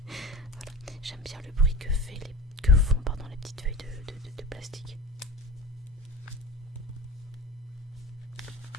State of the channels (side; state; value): both; normal; correlation 0.34